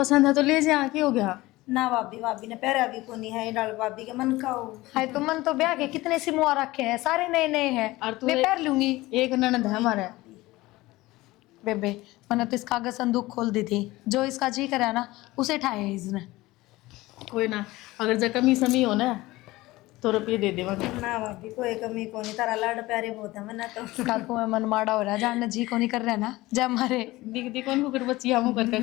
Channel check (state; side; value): quieter; right; 19.2 dB